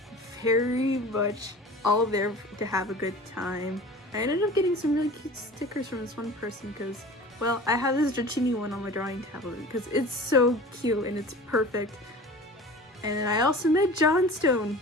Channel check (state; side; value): normal; both; correlation 0.40